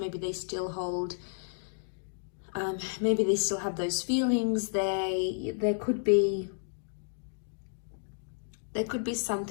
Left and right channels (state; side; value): silent; right; digital silence